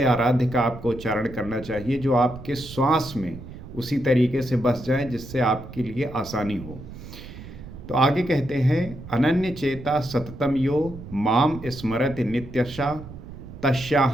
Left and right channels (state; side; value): noise; right; rumble, 14 dB below the sound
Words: आराध्य का आपको उच्चारण करना चाहिए जो आपके श्वास में उसी तरीके से बस जाए जिससे आपके लिए आसानी हो। तो आगे कहते हैं, अनन्य चेता सततम यो माम स्मरति नित्यशा